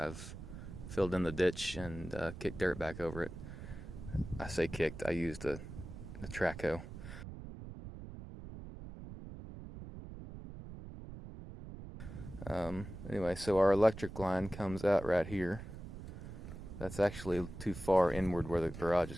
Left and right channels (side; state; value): right; noise; rumble, 11 dB below the sound